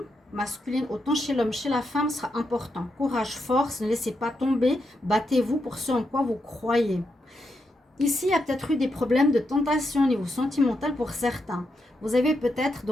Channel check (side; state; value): both; normal; correlation 0.83